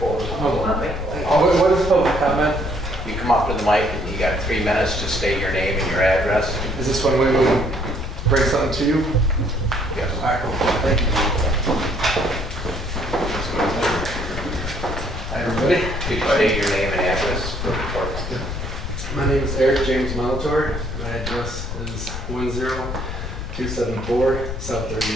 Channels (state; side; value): noise; left; rumble, 6 dB below the sound